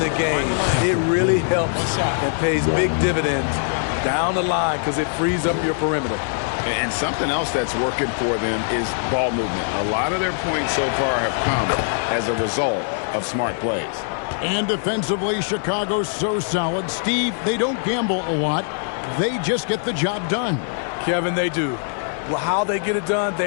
game. It really helps and pays big dividends down the line because it frees up your perimeter. And something else that's working for them is ball movement. A lot of their points so far have come as a result of smart plays. And defensively, Chicago's so solid. Steve, they don't gamble a lot. They just get the job done. Kevin, they do. Well, how they get it done,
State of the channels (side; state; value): right; silent; digital silence